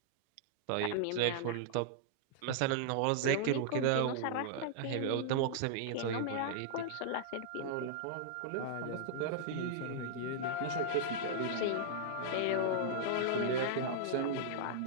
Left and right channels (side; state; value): both; different; correlation -0.02